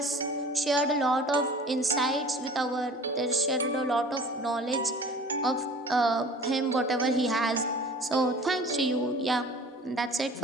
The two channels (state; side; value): normal; both; correlation 0.44